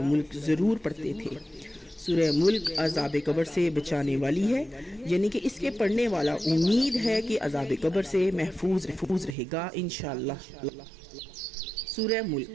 ملک ضرور پڑھتے تھے۔ سورہ ملک عذاب قبر سے بچانے والی ہے، یعنی کہ اس کے پڑھنے والا امید ہے کہ عذاب قبر سے محفوظ رہے گا انشاءاللہ۔ سورہ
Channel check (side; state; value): left; drops out; at 9.3 s